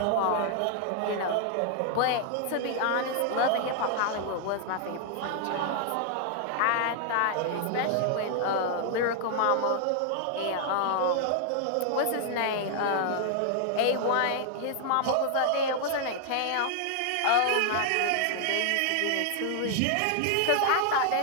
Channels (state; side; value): different; both; correlation 0.00